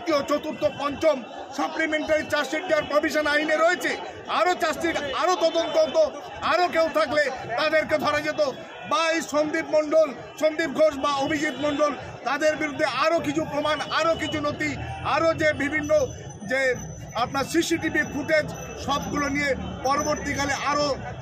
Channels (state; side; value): identical; both; correlation 1.00